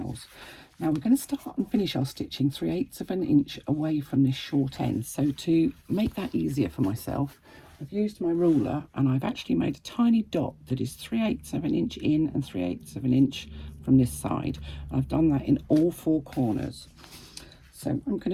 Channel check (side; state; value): both; identical; correlation 1.00